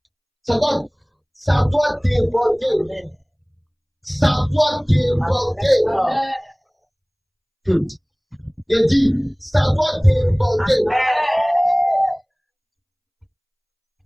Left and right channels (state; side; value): identical; both; correlation 1.00